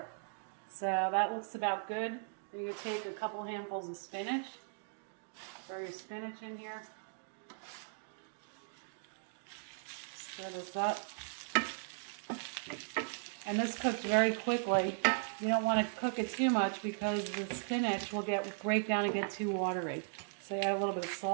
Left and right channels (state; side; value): silent; left; digital silence